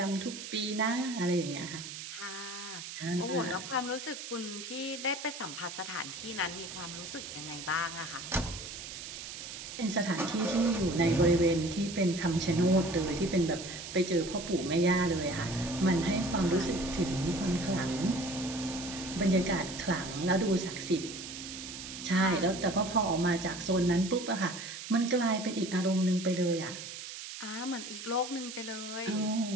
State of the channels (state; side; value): noise; right; hiss, 10 dB below the sound